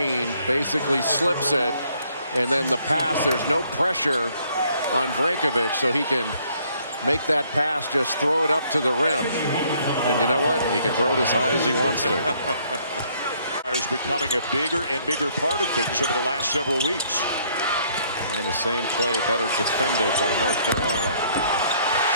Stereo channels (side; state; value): both; inverted; correlation -0.65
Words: basically slips it, and then the pass, there's no pressure on Brankovic, so he can make that pass, just throw it up to the rim. And you know what? He can throw it as high as he wants to. Is becoming a bigger and bigger part of things over the last several weeks. And the same play better defended by North Carolina.